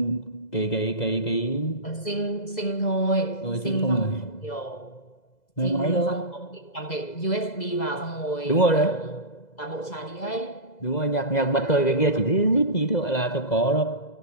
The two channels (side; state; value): right; late; 2.0 ms